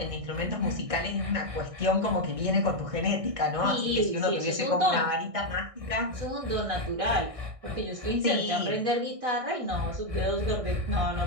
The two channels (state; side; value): late; left; 1.6 ms